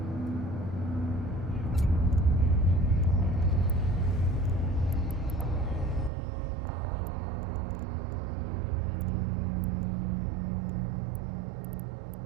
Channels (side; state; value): left; drops out; at 6.1 s